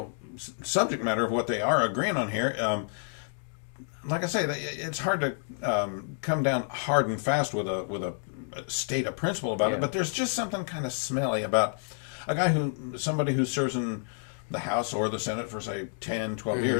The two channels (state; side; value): silent; right; digital silence